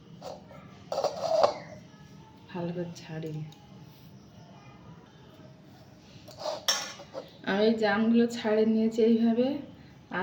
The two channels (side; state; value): both; identical; correlation 1.00